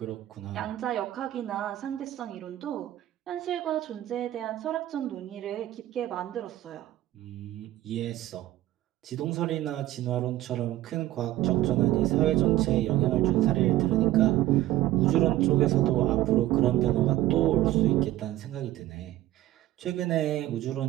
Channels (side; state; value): left; quieter; 14.9 dB